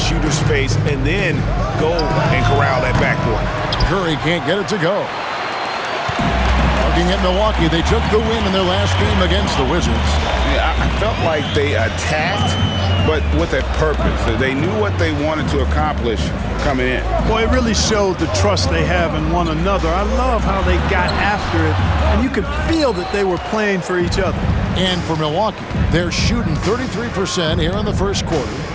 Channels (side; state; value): both; identical; correlation 1.00